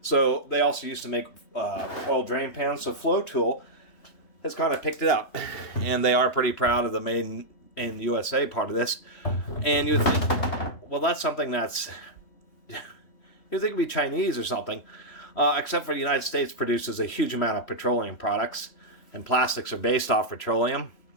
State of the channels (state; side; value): late; right; 3.3 ms